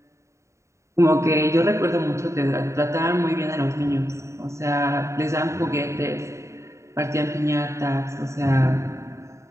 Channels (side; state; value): left; late; 0.14 ms